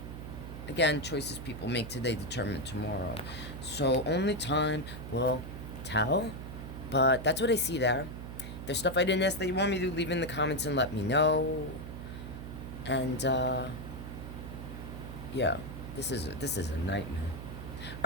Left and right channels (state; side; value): noise; right; hum, 9 dB below the sound